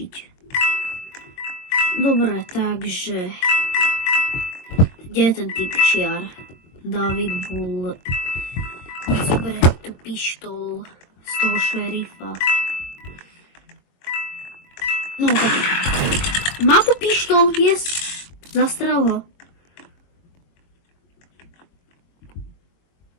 Dobre, takže kde je ten typčiar? David Bull. Zoberie tú pištol z toho šerifa. No, má tu pištol, yes. Zastrel ho.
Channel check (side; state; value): right; late; 22 ms